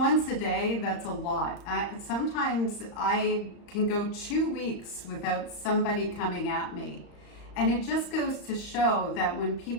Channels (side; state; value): right; late; 35 ms